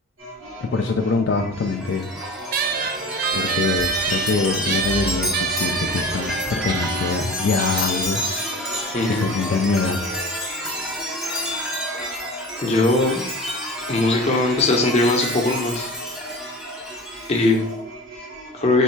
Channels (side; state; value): both; normal; correlation 0.37